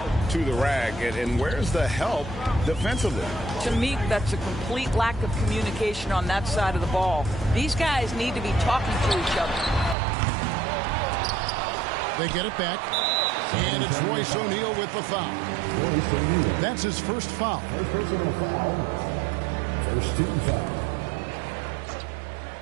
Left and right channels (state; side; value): drops out; left; at 10.0 s